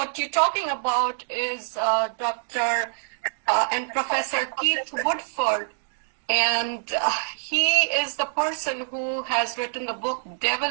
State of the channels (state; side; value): silent; left; digital silence